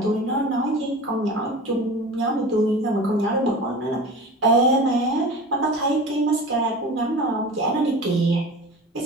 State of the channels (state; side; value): normal; both; correlation 0.35